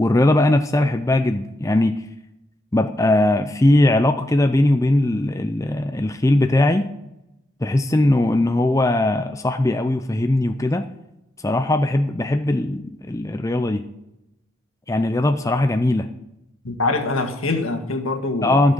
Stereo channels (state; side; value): normal; both; correlation 0.81